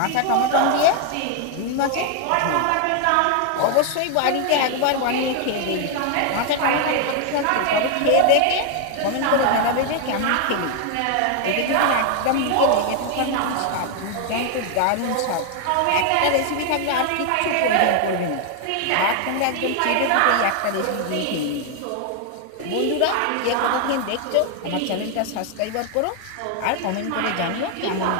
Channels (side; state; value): both; different; correlation 0.00